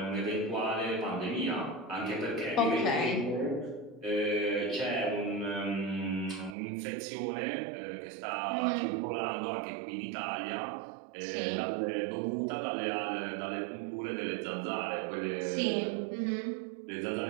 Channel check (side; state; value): left; drops out; at 6.6 s